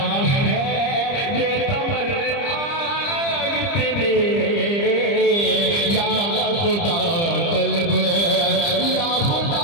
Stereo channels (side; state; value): right; late; 30 ms